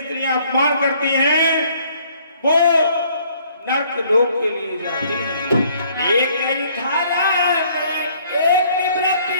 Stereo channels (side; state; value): both; inverted; correlation -0.61